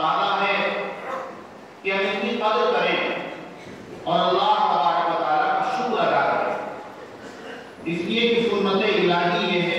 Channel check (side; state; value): both; identical; correlation 1.00